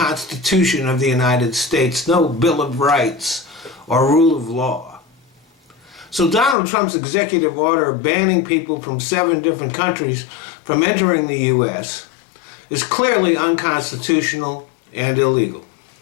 of the United States, no Bill of Rights, or rule of law. So Donald Trump's executive order banning people from 7 different countries from entering the U.S. is clearly unconstitutional and illegal.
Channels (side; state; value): right; drops out; at 6.6 s